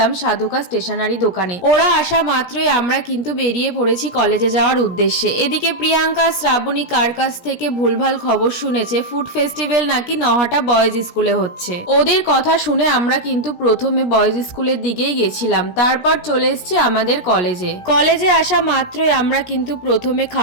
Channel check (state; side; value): late; right; 17 ms